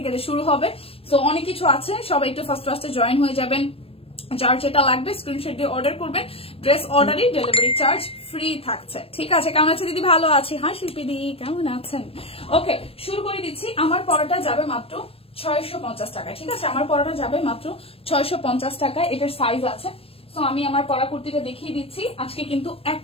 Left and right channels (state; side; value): late; right; 0.28 ms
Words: শুরু হবে। সো অনেক কিছু আছে, সবাই একটু ফার্স্টে জয়েন হয়ে যাবেন। যার যেটা লাগবে স্ক্রিনশট দিয়ে অর্ডার করবেন। ড্রেস অর্ডারই ডেলিভারি চার্জ ফ্রি থাকছে। ঠিক আছে, কেমন আছে দিদি? ভালো আছি। হ্যাঁ শিল্পী দি, কেমন আছেন? ওকে, শুরু করে দিচ্ছি। আমার পড়াটা যাবে মাত্র 650 টাকা। ঠিক আছে, আমার পড়াটা যাবে মাত্র 650 টাকায়। এটার সাইজ আছে। সো আমি আমার পরা কুর্তিটা দেখিয়ে দিচ্ছি। আজকে কিন্তু